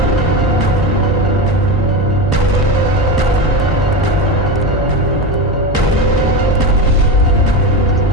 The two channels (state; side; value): normal; both; correlation 0.21